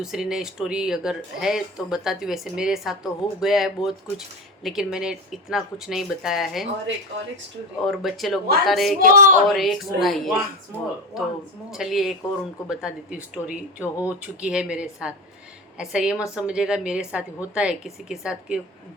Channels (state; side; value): normal; both; correlation 0.22